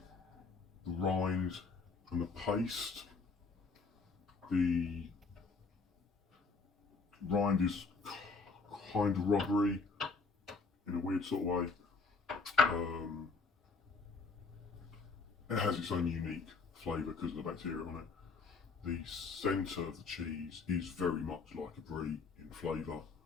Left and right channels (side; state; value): right; quieter; 4.4 dB